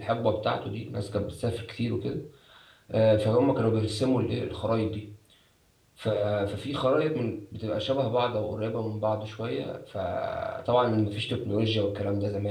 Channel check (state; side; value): identical; both; correlation 1.00